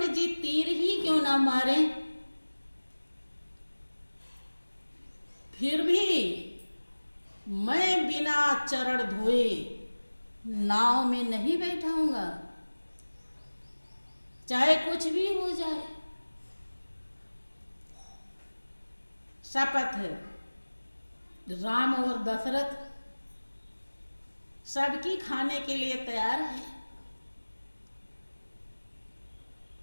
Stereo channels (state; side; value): inverted; both; correlation -1.00